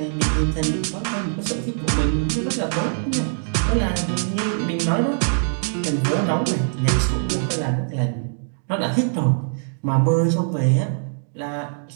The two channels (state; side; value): silent; left; digital silence